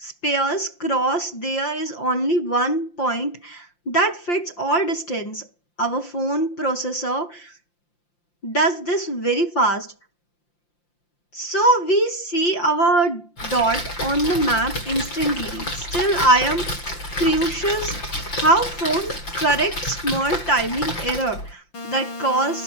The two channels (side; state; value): right; late; 5.8 ms